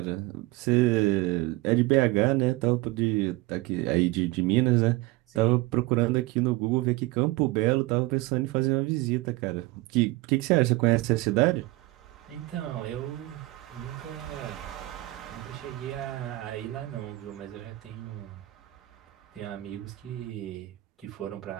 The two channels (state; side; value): quieter; left; 19.9 dB